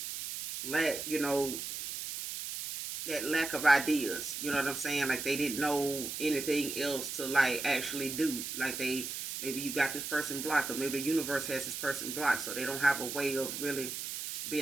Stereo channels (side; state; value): right; noise; hiss, 6 dB below the sound